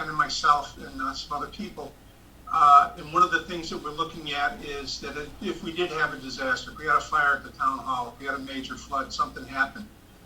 and myself and some other people. And one of the things that we're looking at is that if we did have a disaster, if we had a fire at the town hall, if we had a major flood, something happened,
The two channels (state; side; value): identical; both; correlation 1.00